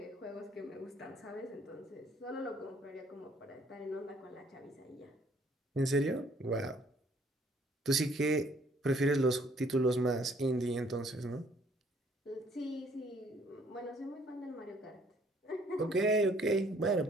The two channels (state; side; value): normal; both; correlation 0.62